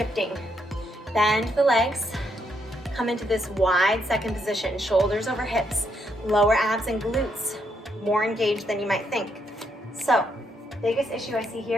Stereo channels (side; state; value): both; normal; correlation 0.76